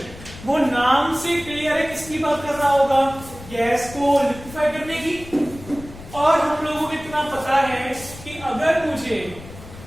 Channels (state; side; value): noise; left; rumble, 16 dB below the sound